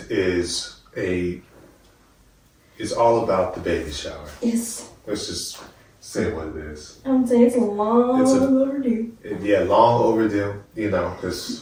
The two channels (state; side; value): identical; both; correlation 1.00